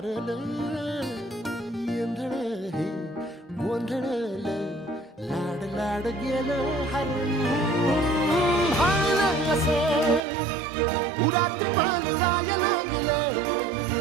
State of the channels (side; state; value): left; drops out; at 10.2 s